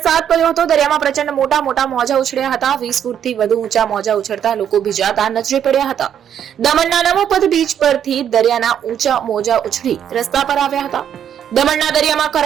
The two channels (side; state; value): left; quieter; 9.2 dB